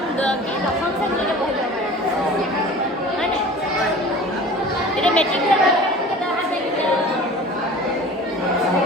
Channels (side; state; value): both; normal; correlation 0.41